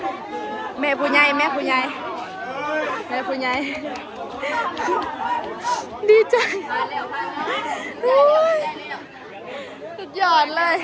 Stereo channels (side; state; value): both; identical; correlation 1.00